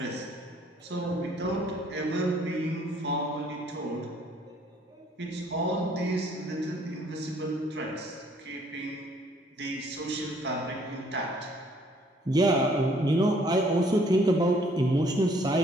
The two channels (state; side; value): normal; both; correlation 0.62